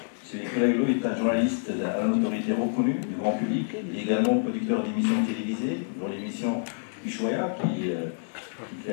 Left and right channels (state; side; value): silent; right; 60 dB below the other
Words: M. Nicolas Hulot est un journaliste à la notoriété reconnue du grand public. Il est également producteur d'émissions télévisées, dont l'émission Ushuaïa, qui fait